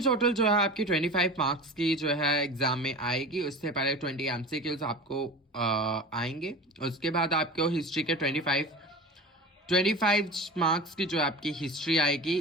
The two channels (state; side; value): normal; both; correlation 0.33